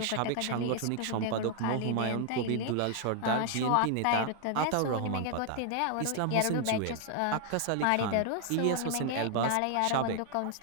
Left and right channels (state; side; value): different; both; correlation 0.00